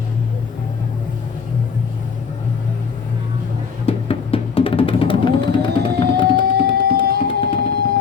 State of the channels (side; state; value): right; quieter; 6.0 dB